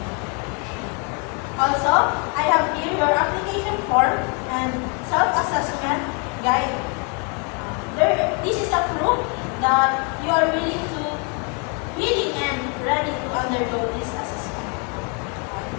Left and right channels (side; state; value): right; quieter; 35.9 dB